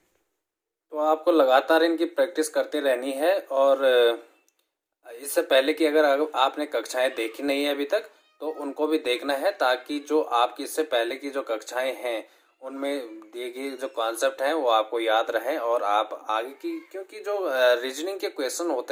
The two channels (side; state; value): both; identical; correlation 1.00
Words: तो आपको लगातार इनकी प्रैक्टिस करते रहनी है और इससे पहले कि अगर आपने कक्षाएं देखी नहीं है अभी तक तो उनको भी देखना है, ताकि जो आपकी इससे पहले की जो कक्षाएं हैं उनमें दिए गए जो कॉन्सेप्ट हैं वो आपको याद रहें और आप आगे की, क्योंकि जो रीजनिंग के क्वेश्चन होते